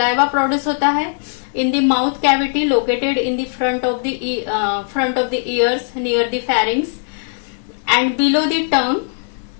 प्रोड्यूस होता है in the mouth cavity located in the front of the years near the फैरिंग्स and below the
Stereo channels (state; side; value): silent; right; digital silence